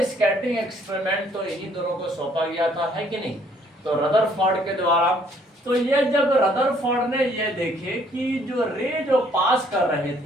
स्कैटरिंग एक्सपेरिमेंट तो इन्हीं दोनों को सौंपा गया था, है कि नहीं, तो रदरफोर्ड के द्वारा। तो ये जब रदरफोर्ड ने ये देखे कि जो रे जो पास कर रहे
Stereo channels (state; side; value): normal; both; correlation 0.63